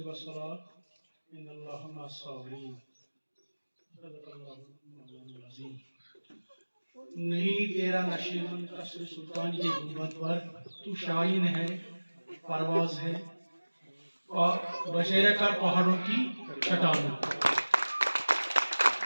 वस्सलात इन्नल्लाहा मअस-साबिरीन सदक़ल्लाहुल अज़ीम। नहीं तेरा नशीबन कसर सुल्तान के गुंबद पर तू शाहीन है, परवाज है और बशेरे कर पहाड़ों की चट्टानों।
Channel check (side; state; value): both; inverted; correlation -1.00